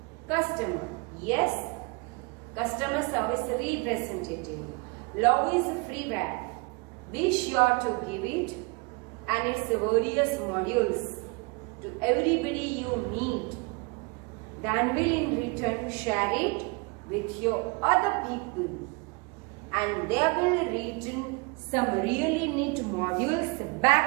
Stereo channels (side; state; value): left; quieter; 29.5 dB